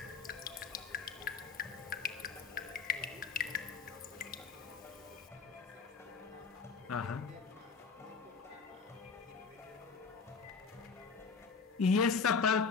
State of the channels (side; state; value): right; quieter; 5.3 dB